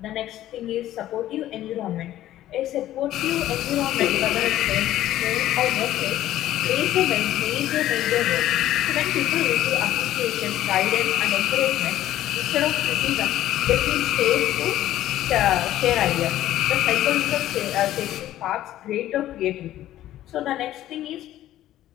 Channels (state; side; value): quieter; right; 13.5 dB